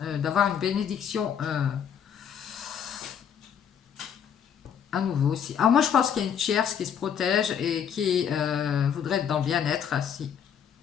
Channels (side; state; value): right; quieter; 8.2 dB